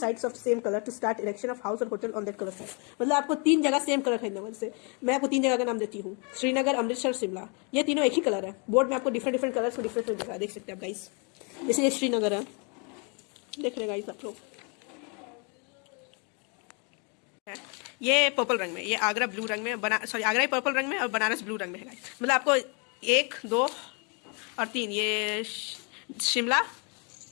of same colour to start erection of house और hotel on that colour side. मतलब आपको 3 जगह सेम कलर खरीदना है। जैसे मैं आपको 3 जगह का नाम देती हूँ, श्रीनगर, अमृतसर, शिमला, ये तीनों एक ही कलर है। बोर्ड में आपको डिफरेंट कलर्स में डिफरेंट जगह देख सकते हैं आप गाइस। जैसे ये श्रीनगर है, देख रहे गाइस आप लोग, ये पर्पल रंग में, ये आगरा ब्लू रंग में, आगरा ही पर्पल रंग में और बनारस ब्लू रंग में है गाइस। मतलब आपको 1, 2 और 3, ये शिमला,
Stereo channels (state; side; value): quieter; right; 34.9 dB